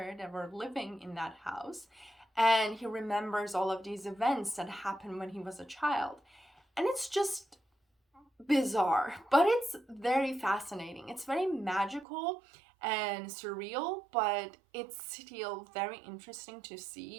that were living in that house. And he remembers all of these events that happened when he was a child. And it's just bizarre, but it's very fascinating. It's very magical and surreal, but it's still very interesting to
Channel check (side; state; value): left; drops out; at 12.1 s